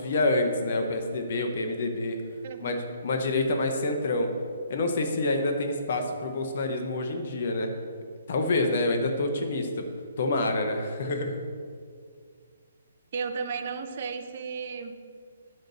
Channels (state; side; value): inverted; both; correlation -0.62